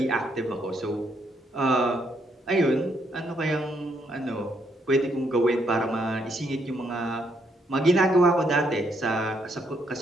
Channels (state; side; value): normal; both; correlation 0.74